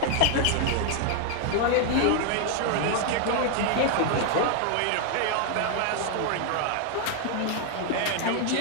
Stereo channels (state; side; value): different; both; correlation 0.00